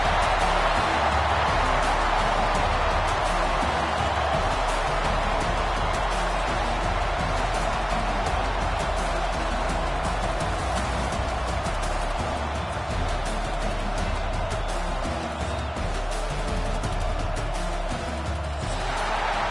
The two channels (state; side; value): identical; both; correlation 1.00